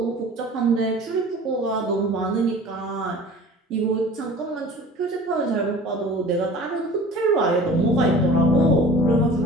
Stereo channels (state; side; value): normal; both; correlation 0.43